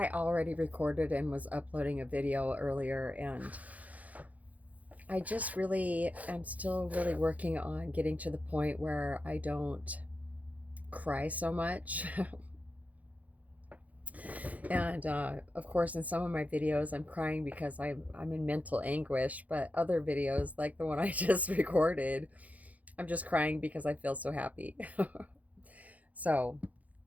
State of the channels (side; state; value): left; late; 0.074 ms